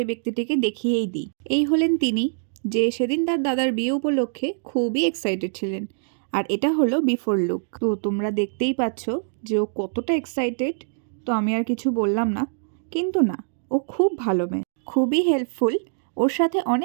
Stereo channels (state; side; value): silent; left; digital silence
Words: ব্যক্তিটিকে দেখিয়েই দিই। এই হলেন তিনি, যে সেদিন তার দাদার বিয়ে উপলক্ষে খুবই এক্সাইটেড ছিলেন। আর এটা হলো বিফোর লুক। তো তোমরা দেখতেই পাচ্ছ যে ও কতটা এক্সাইটেড। তো আমি আর কিছু বললাম না, কিন্তু না, ও খুব ভালো মেয়ে, খুবই হেল্পফুল। ওর সাথে